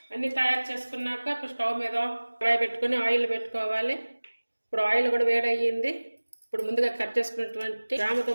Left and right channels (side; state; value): both; inverted; correlation -1.00